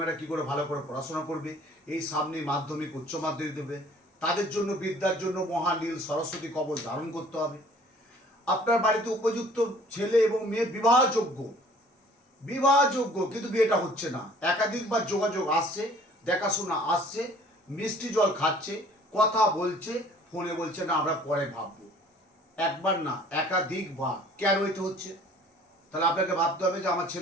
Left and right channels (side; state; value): both; normal; correlation 0.53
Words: কী করে ভালো করে পড়াশোনা করবে। এই সামনে মাধ্যমিক উচ্চ মাধ্যমিক দেবে, তাদের জন্য বিদ্যার জন্য মহানীল সরস্বতী কবচ ধারণ করতে হবে। আপনার বাড়িতে উপযুক্ত ছেলে এবং মেয়ে বিবাহযোগ্য, কিন্তু বিয়েটা হচ্ছে না। একাধিকবার যোগাযোগ আসছে, দেখাশোনা আসছে, মিষ্টি জল খাচ্ছে, কথা বলছে, ফোনে বলছে না আমরা পরে ভাববো। একবার না, একাধিকবার। কেন এটা হচ্ছে? তাহলে আপনাকে ভাবতে হবে যে আমার